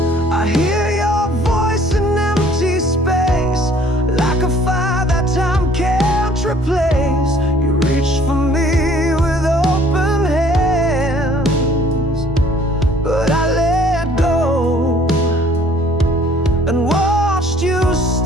Replace. You reached for me with open hands, but I let go and watched you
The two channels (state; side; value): normal; both; correlation 0.57